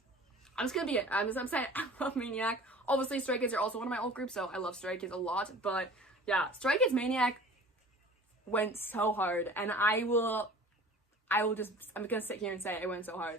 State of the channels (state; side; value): normal; both; correlation 0.44